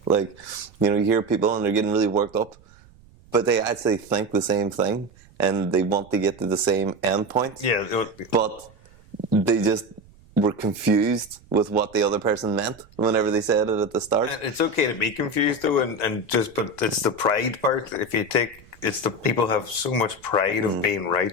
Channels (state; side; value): noise; right; rumble, 26 dB below the sound